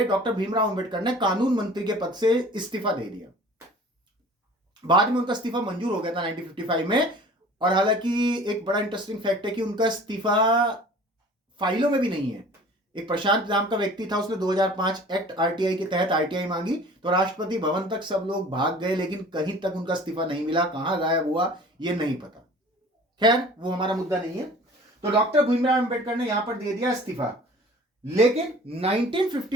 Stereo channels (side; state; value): both; normal; correlation 0.46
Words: डॉक्टर भीमराव अंबेडकर ने कानून मंत्री के पद से इस्तीफा दे दिया। बाद में उनका इस्तीफा मंजूर हो गया था 1955 में। और हालांकि एक बड़ा इंटरेस्टिंग फैक्ट है कि उनका इस्तीफा फाइलों में भी नहीं है। एक प्रशांत नाम का व्यक्ति था, उसने 2005 एक्ट आरटीआई के तहत आरटीआई मांगी तो राष्ट्रपति भवन तक सब लोग भाग गए, लेकिन कहीं तक उनका इस्तीफा नहीं मिला, कहां गायब हुआ ये नहीं पता। खैर वो हमारा मुद्दा नहीं है। तो डॉक्टर भीमराव अंबेडकर ने यहां पर दे दिया इस्तीफा। लेकिन